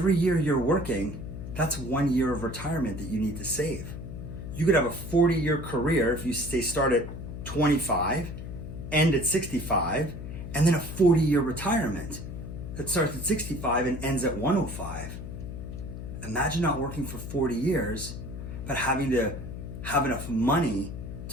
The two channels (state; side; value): noise; left; hum, 8 dB below the sound